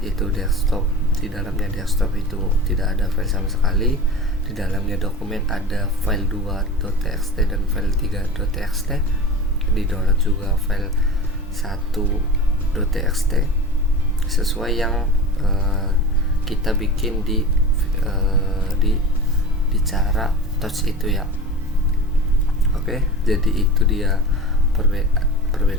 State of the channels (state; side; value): normal; both; correlation 0.32